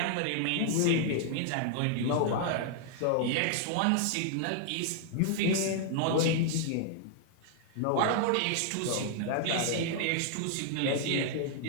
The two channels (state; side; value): different; both; correlation 0.00